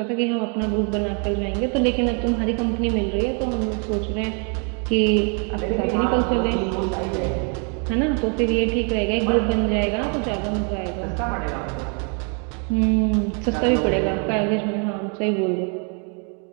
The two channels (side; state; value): left; quieter; 38.7 dB